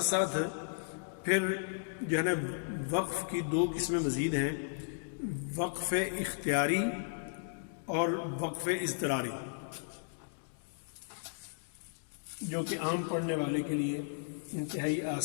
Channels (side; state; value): right; silent; digital silence